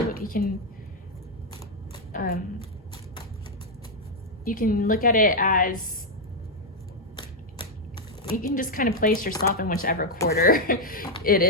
You can look at it as, you can just kind of place yourself in whichever quarter it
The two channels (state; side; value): normal; both; correlation 0.00